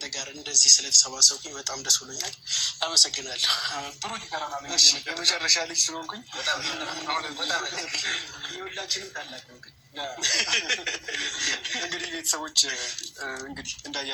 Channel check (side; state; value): both; identical; correlation 1.00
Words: ጋር እንደዚህ ስለተሰባሰብኩኝ በጣም ደስ ብሎኛል። አመሰግናለሁ። የመጨረሻ ልጅ ስለሆንኩኝ የሁላችንም ታላቅ ነው። እንግዲህ ቤተሰቦች እንግዲህ